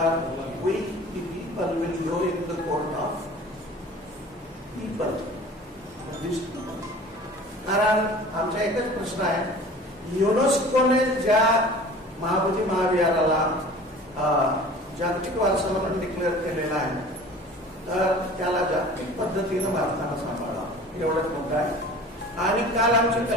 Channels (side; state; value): both; normal; correlation 0.43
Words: we people will go in the court of people. कारण आमचा एकच प्रश्न आहे, युनेस्कोने ज्या महाबोधी महाविहाराला जागतिक वारसा म्हणून डिक्लेअर केलेला आहे तर त्याला जागतिक पद्धतीनं भारतानं सांभाळा एवढंच मुद्दा आहे. आणि काल आमची